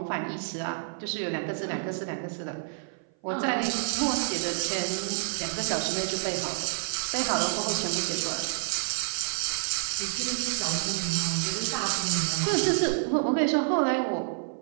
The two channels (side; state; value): left; silent; 56 dB below the other